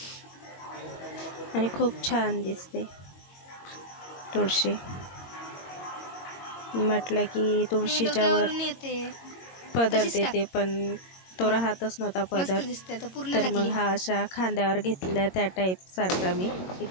आणि खूप छान दिसते तुळशी. म्हटलं की तुळशीच्या वर पदर देते, पण तो राहतच नव्हता पदर. तर मग हा अशा खांद्यावर घेतलेला त्या टाईप सारखा मी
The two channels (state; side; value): late; right; 22 ms